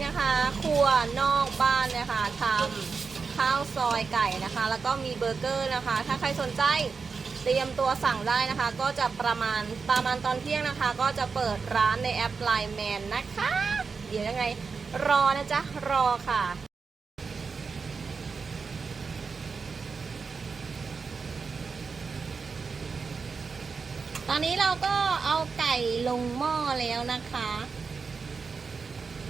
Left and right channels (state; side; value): quieter; left; 5.0 dB